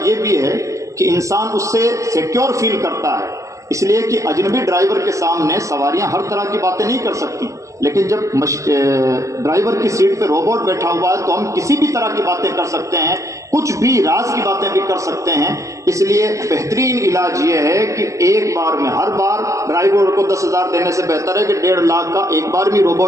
یہ بھی ہے کہ انسان اس سے سیکیور فیل کرتا ہے، اس لیے کہ اجنبی ڈرائیور کے سامنے سواریاں ہر طرح کی باتیں نہیں کر سکتی، لیکن جب ڈرائیور کی سیٹ پہ روبوٹ بیٹھا ہوا ہے تو ہم کسی بھی طرح کی باتیں کر سکتے ہیں، کچھ بھی راز کی باتیں بھی کر سکتے ہیں۔ اس لیے بہترین علاج یہ ہے کہ ایک بار میں، ہر بار ڈرائیور کو 10,000 دینے سے بہتر ہے کہ 1.5 لاکھ کا ایک بار بھی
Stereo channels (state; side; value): late; left; 0.15 ms